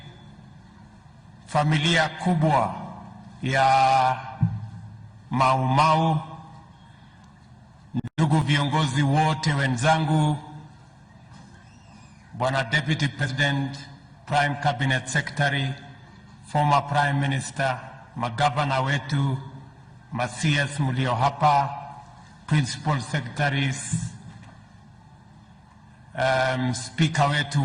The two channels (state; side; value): identical; both; correlation 1.00